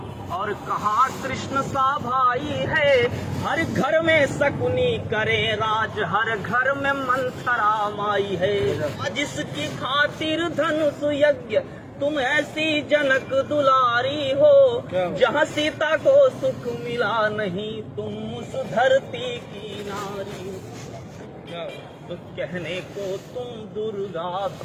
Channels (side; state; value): both; identical; correlation 1.00